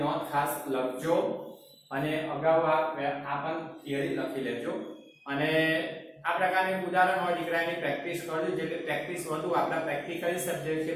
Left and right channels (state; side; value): identical; both; correlation 1.00